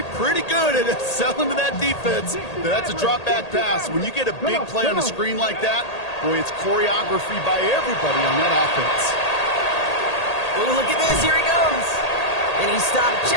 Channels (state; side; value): late; right; 1.8 ms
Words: pretty good at selling to that defense. That's a drop back pass. When you get a big play on a screen like that, Boy, it's choreography by everybody on that offense. Oh, look at this. Here he goes. And he stopped